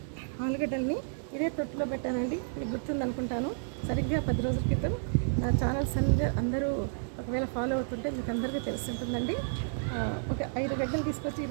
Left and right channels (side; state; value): left; silent; digital silence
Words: ఆలుగడ్డల్ని ఇదే తొట్టులో పెట్టానండి. మీకు గుర్తుంది అనుకుంటాను. సరిగ్గా 10 రోజుల క్రితం నా ఛానల్స్ అందరూ ఒకవేళ ఫాలో అవుతుంటే మీకు అందరికీ తెలుస్తుంటుందండి. ఒక 5 గడ్డలు తీసుకొచ్చి